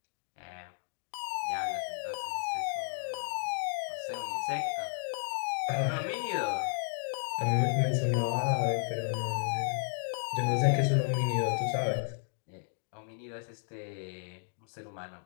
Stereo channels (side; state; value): right; silent; digital silence